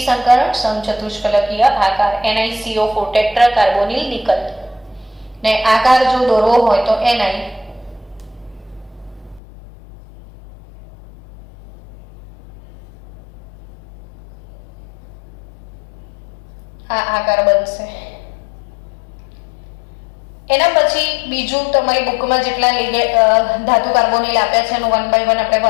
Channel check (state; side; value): drops out; right; at 9.4 s